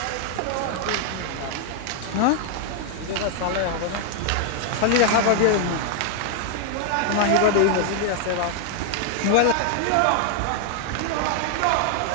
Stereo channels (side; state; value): both; different; correlation 0.00